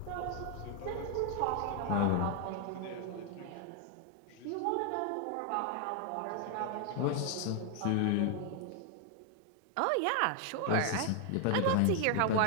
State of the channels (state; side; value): different; both; correlation 0.00